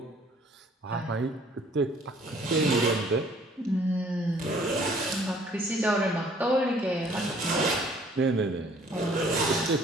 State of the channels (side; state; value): both; normal; correlation 0.58